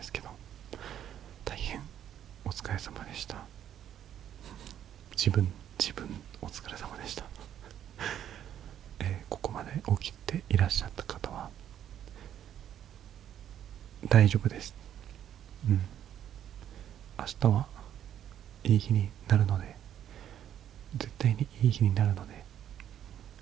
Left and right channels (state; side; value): quieter; left; 10.4 dB